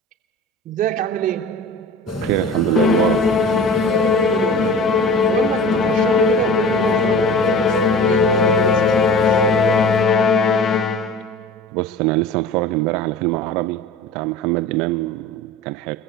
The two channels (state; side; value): normal; both; correlation 0.38